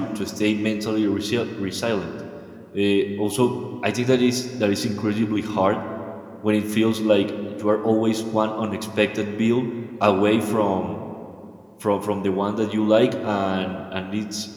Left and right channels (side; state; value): both; identical; correlation 1.00